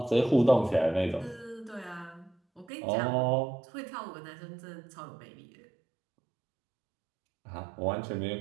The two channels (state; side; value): drops out; left; at 2.7 s